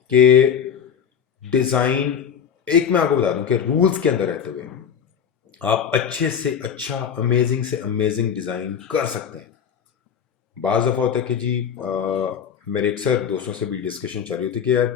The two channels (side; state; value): right; quieter; 7.8 dB